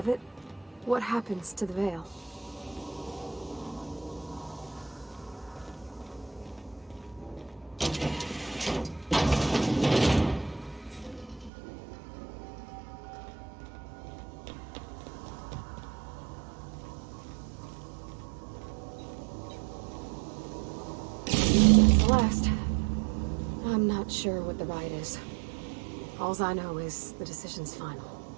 what happens to the Veil? Celeste. I'm not sure what the right is. Alls I know is the decision's final.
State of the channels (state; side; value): drops out; left; at 11.5 s